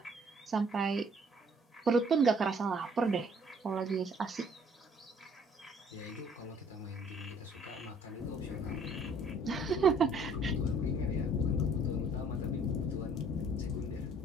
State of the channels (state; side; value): normal; both; correlation 0.59